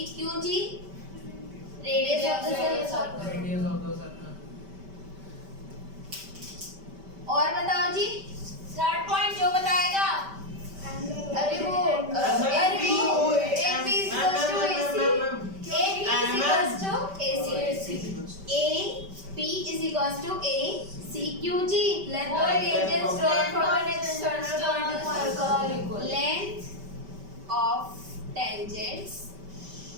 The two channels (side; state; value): left; late; 5.1 ms